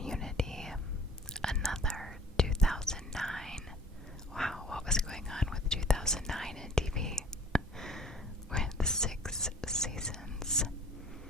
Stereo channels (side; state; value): both; normal; correlation 0.49